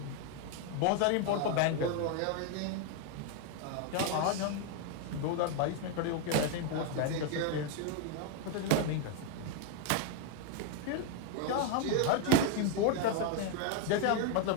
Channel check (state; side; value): different; both; correlation 0.01